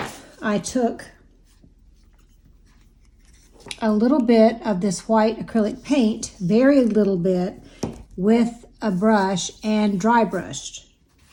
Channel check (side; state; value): both; identical; correlation 1.00